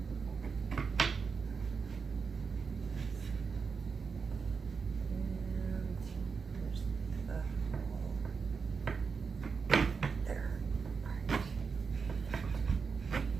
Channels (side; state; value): left; quieter; 5.4 dB